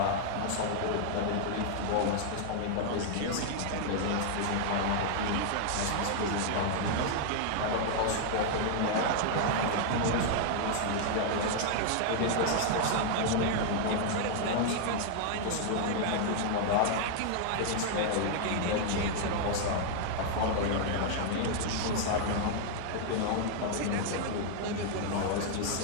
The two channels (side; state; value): both; different; correlation 0.00